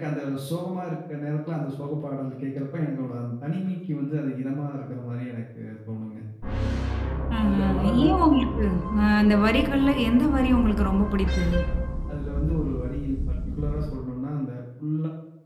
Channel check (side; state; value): both; identical; correlation 1.00